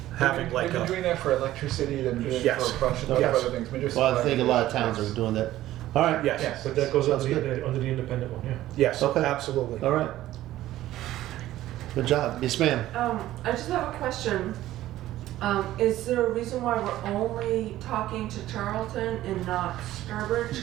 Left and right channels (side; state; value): left; quieter; 14.5 dB